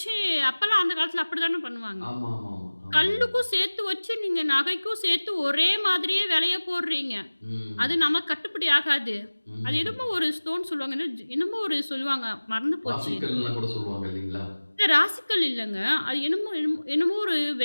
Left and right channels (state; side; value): inverted; both; correlation -1.00